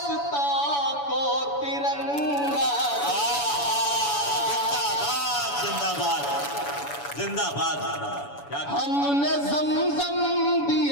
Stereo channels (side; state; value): right; late; 7.0 ms